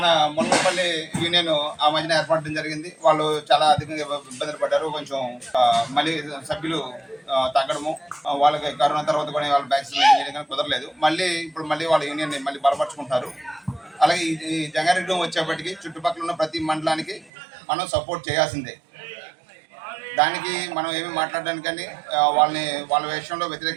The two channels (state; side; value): drops out; left; at 17.3 s